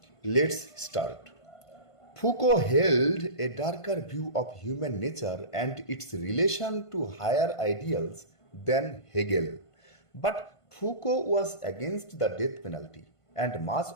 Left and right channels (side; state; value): right; late; 1.5 ms